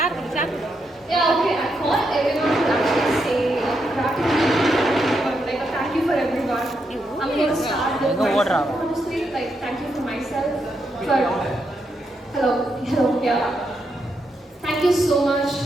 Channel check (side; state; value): both; normal; correlation 0.81